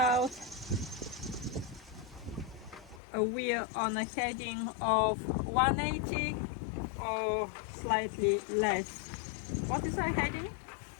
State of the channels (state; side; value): drops out; right; at 3.0 s